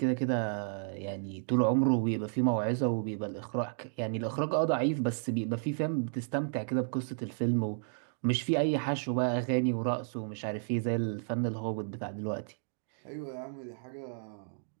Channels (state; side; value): silent; left; digital silence